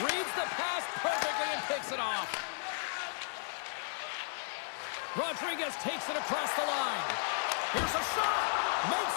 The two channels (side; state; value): right; silent; digital silence